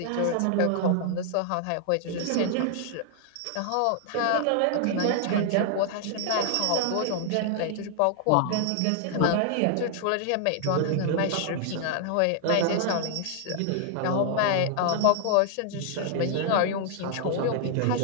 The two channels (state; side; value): different; both; correlation 0.00